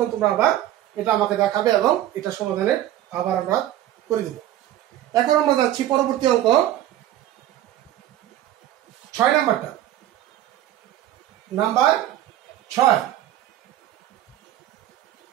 তোমরা আবার এটা আমাকে দেখাবে এবং এটা সমাধানের আবার আমরা করে দেব। এখন আমরা যাচ্ছি পরবর্তী অঙ্ক 6 নাম্বারটা, নাম্বার 6।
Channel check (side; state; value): left; quieter; 13.0 dB